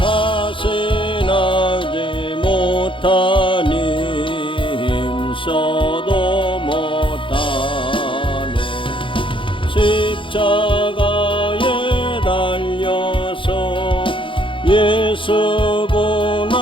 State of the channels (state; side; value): late; right; 0.25 ms